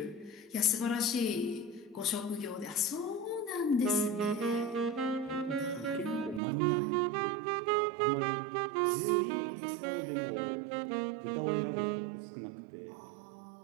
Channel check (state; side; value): drops out; left; at 6.4 s